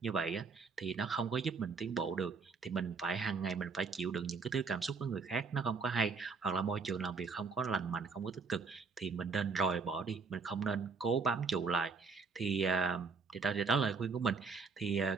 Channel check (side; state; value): left; quieter; 4.8 dB